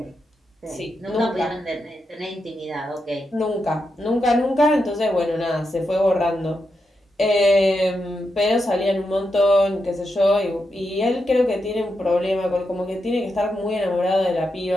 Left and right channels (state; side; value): normal; both; correlation 0.86